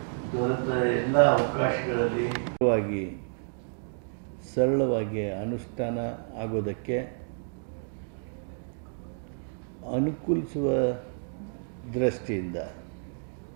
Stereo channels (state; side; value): silent; left; digital silence